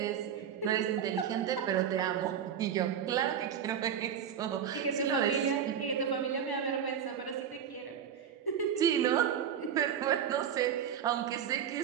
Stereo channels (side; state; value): left; quieter; 8.5 dB